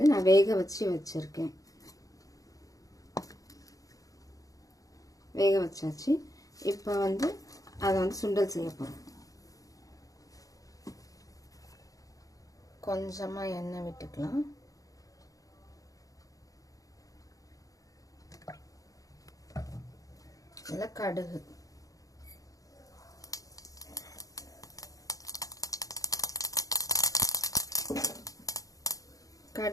நான் வேக வச்சுருக்கேன். வேக வச்சாச்சு. இப்போ வந்து அதை வந்து சுண்டல் செய்ய போகிறோம். கொஞ்சமாக எண்ணெய் விட்டுக்கலாம். இல்லை கடுகு,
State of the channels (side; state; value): right; late; 0.17 ms